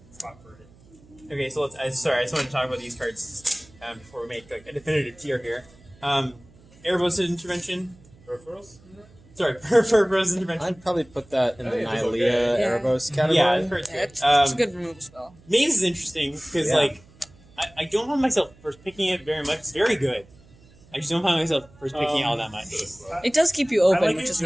spot for it. Okay. So let's. Sorry, I just wanted to talk about these cards before we make like a definitive tier here. Erebos intervention. Peripherals? Sorry, Purpose intervention. I'd probably put that in the I think it's Nylea okay. Yeah. Erebos category. Yeah, it's pretty Yeah, good. it's a good removal spell. Maze is interesting because Yeah. like I don't find myself first picking it very much. It's very good. I just don't find myself first picking it all that much. It does keep you I open, like which it is just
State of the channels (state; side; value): noise; right; hum, 26 dB below the sound